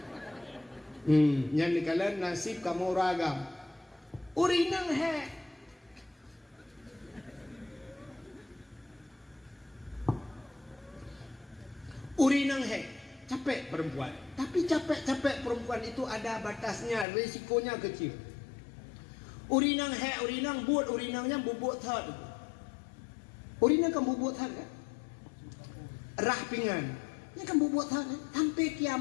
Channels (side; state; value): right; drops out; at 17.1 s